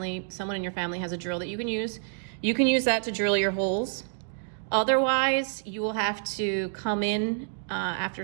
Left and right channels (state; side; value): silent; left; digital silence